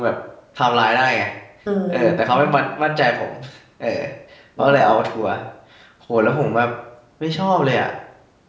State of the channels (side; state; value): both; identical; correlation 1.00